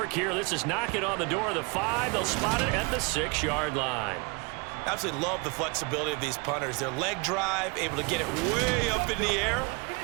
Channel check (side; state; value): left; quieter; 30.2 dB